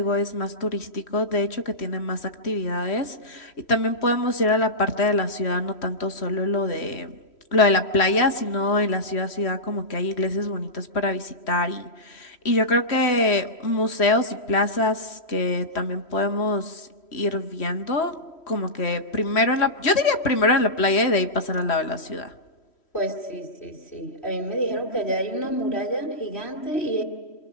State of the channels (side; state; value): right; late; 3.1 ms